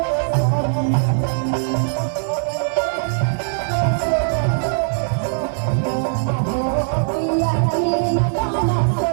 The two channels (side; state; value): left; silent; digital silence